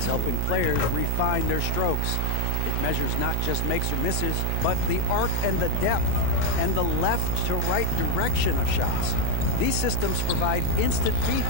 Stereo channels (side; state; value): both; different; correlation 0.01